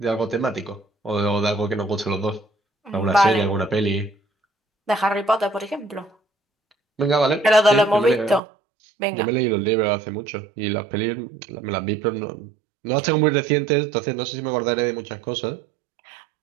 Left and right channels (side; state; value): left; drops out; at 8.4 s